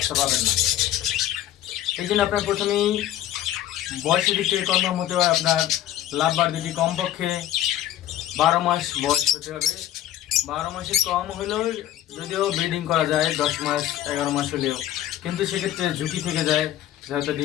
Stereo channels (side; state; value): right; quieter; 12.7 dB